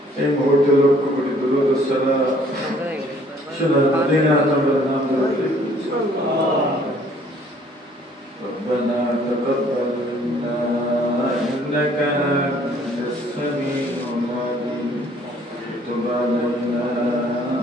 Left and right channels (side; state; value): both; normal; correlation 0.59